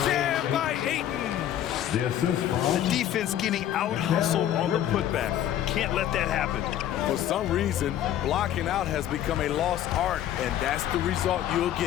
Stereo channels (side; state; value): right; quieter; 11.5 dB